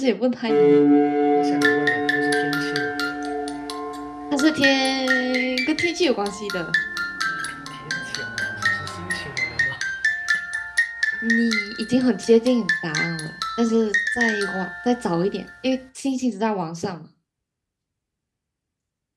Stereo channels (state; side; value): identical; both; correlation 1.00